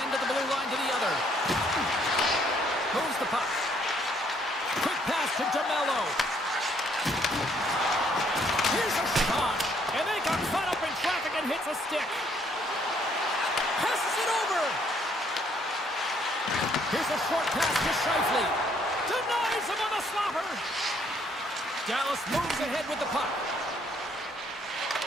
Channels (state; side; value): normal; both; correlation 0.67